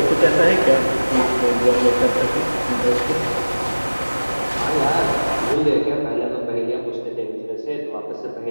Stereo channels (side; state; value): both; inverted; correlation -1.00